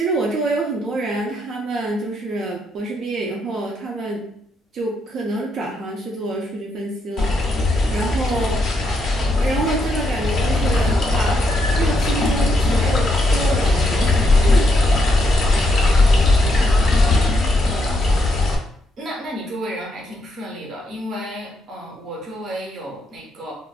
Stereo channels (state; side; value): normal; both; correlation 0.78